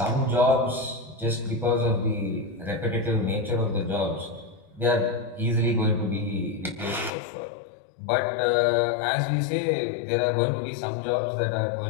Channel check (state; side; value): drops out; right; at 7.1 s